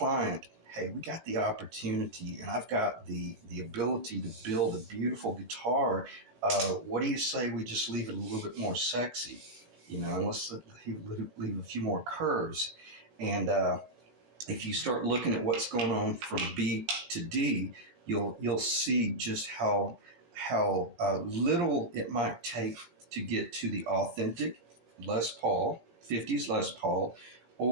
hey, we got the opportunity, and I've got the ability to build a beautiful guitar. What do you say we just leave it a little bit more sexy? You know, unless he leave a few more curves. And if you start looking at what's going on from B to D, you'll see just how little it might take to get to the authentic Les Paul, 50s Les Paul,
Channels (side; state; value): left; late; 18 ms